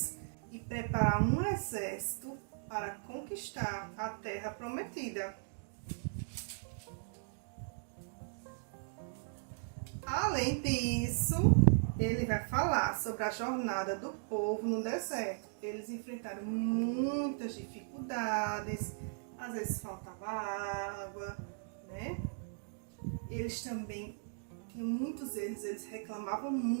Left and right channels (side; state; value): left; silent; digital silence